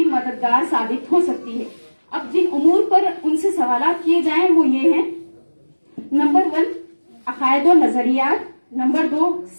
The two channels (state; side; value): inverted; both; correlation -1.00